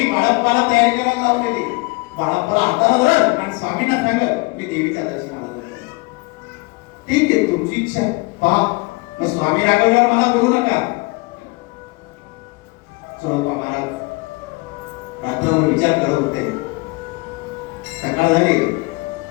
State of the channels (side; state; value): right; quieter; 26.2 dB